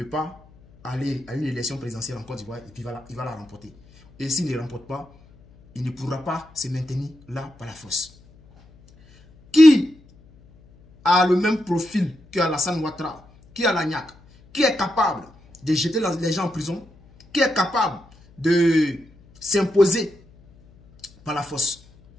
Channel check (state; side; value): noise; left; hum, 27 dB below the sound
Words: pas aller à une élection présidentielle en Côte d'Ivoire et puis il va la remporter. Et s'il ne remporte pas, il ne pourra pas se maintenir là par la force. Qui a le même profil que Alassane Ouattara, qui a la niaque, qui est capable de jeter les gens en prison, qui est capable de s'imposer par la force?